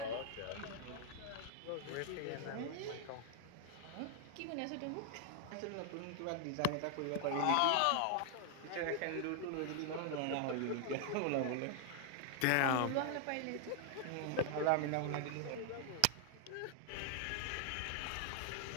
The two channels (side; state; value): both; different; correlation 0.00